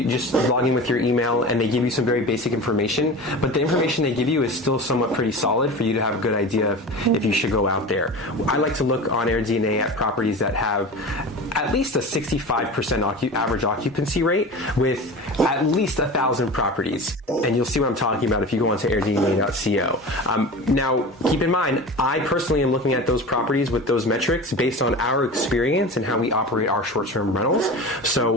just log in with your email, and they give you some very basic information. But the information they give you is still somewhat pretty solid for you to have a good idea of if you should go out there. I like to look on AirDNA at properties that have at least a 65% average occupancy rate with at least 1,000 properties. And you'll see what I'm talking about if you go onto airdna.co. Now, keep in mind, I personally am looking at those properties with those metrics based on our experience and how we operate our short-term rentals.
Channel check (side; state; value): both; normal; correlation 0.32